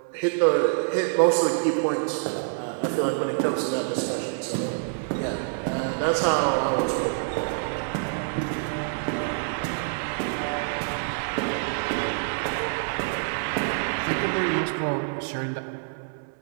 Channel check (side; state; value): left; silent; 61 dB below the other